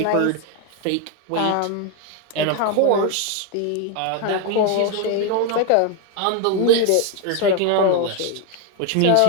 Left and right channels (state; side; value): different; both; correlation 0.01